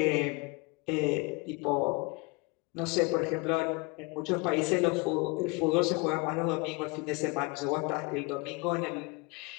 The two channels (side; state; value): right; quieter; 26.9 dB